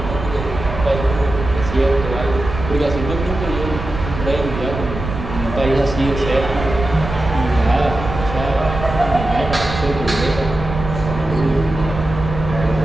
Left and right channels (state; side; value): noise; right; rumble, 7 dB below the sound